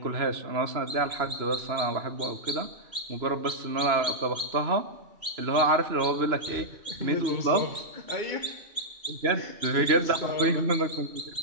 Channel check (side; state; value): left; late; 3.0 ms